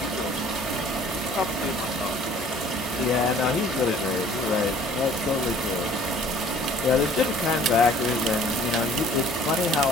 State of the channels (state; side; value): normal; both; correlation 0.53